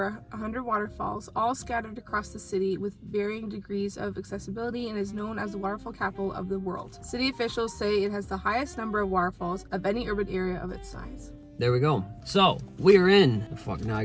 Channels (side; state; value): both; identical; correlation 1.00